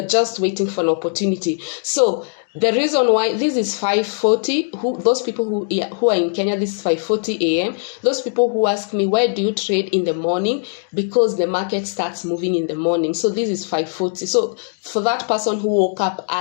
just waiting for an opportunity. So the reason why this is 5:40, those people who are in Kenya, this is 5:40 a.m. Those people who ask me, why do you trade in the morning? Because the market starts moving in the morning. So this is 5:40. So for that person who woke up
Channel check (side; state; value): right; silent; 66 dB below the other